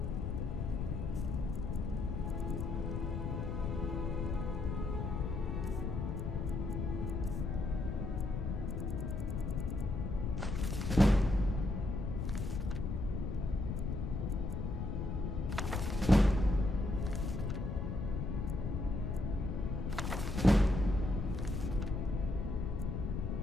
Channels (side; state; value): left; noise; rumble, 2 dB below the sound